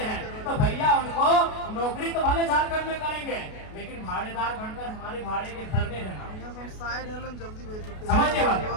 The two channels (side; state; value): right; late; 33 ms